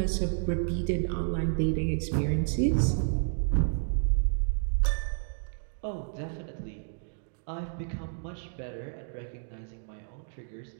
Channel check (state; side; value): silent; left; digital silence